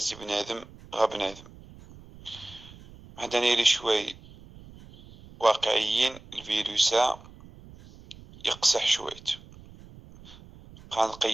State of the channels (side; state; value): right; noise; rumble, 20 dB below the sound